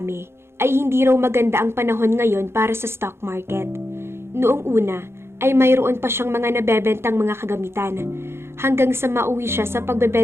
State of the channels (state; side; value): late; left; 0.12 ms